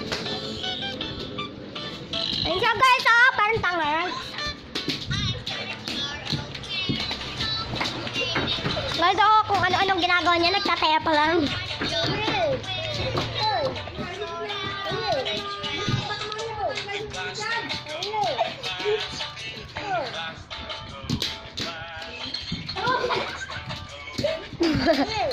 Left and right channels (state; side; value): identical; both; correlation 1.00